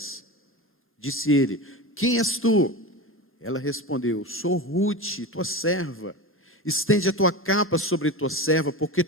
Disse ele: quem és tu? Ela respondeu: sou Ruth, tua serva. Estende a tua capa sobre tua serva, porque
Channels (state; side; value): normal; both; correlation 0.25